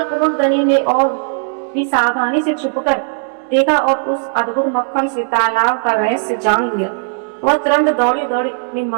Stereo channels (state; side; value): silent; left; digital silence